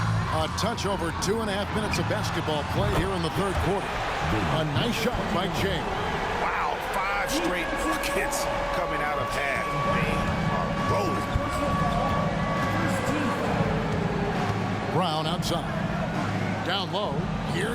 A touch over 2.5 minutes of basketball play here in the third quarter. A nice shot by Jay. Wow, 5 straight buckets coming out of half. They are rolling. Brown outside. Down low.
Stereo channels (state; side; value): identical; both; correlation 1.00